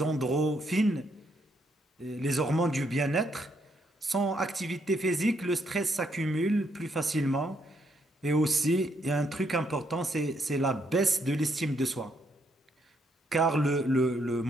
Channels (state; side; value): normal; both; correlation 0.74